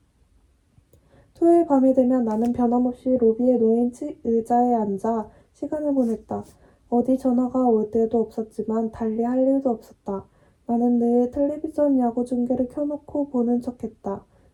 토요일 밤이 되면 나는 변함없이 로비에 놓인 의자에 앉아 시간을 보냈다. 어디 전화가 올 때도 없었지만 달리 할 일도 없었다. 나는 늘 텔레비전 야구 중계를 켜놓고 보는 척했다.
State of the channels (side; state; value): both; identical; correlation 1.00